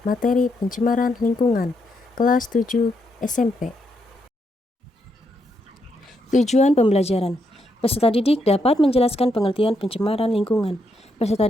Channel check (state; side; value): normal; both; correlation 0.79